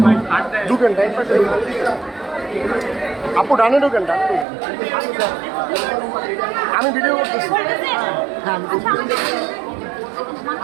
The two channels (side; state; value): left; drops out; at 4.5 s